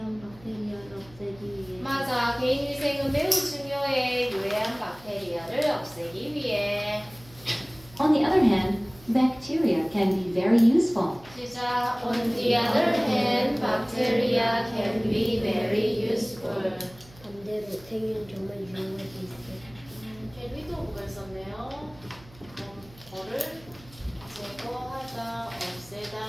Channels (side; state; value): right; noise; hum, 23 dB below the sound